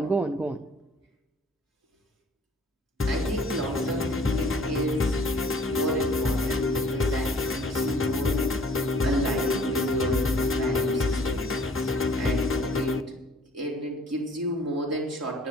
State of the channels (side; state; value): both; normal; correlation 0.54